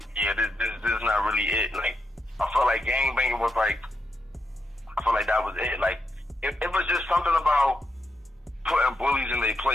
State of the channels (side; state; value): both; normal; correlation 0.83